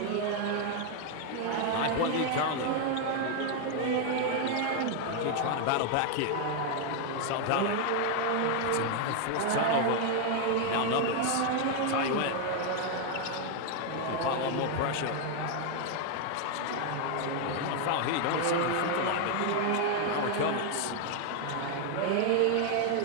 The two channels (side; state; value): both; different; correlation 0.01